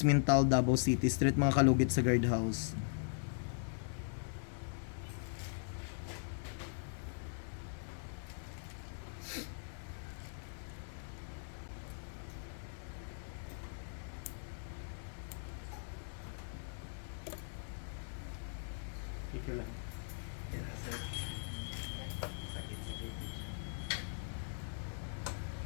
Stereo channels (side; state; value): right; silent; digital silence